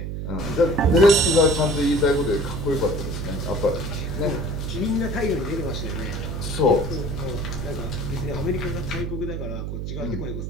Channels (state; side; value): noise; right; hum, 4 dB below the sound